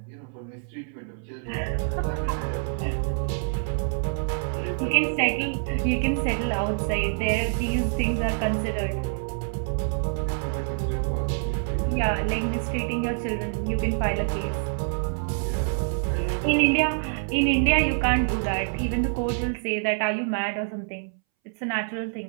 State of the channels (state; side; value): silent; left; 61 dB below the other